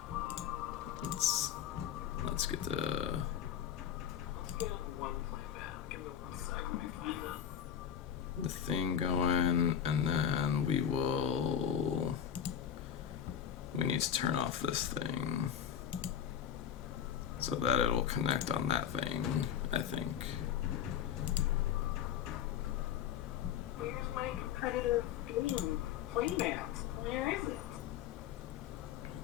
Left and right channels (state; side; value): quieter; right; 9.0 dB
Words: Let's get the thing going, and then we need to turn off this thing so that it'll connect on that thing, I think. Where's my competitive game playmat? Where is it?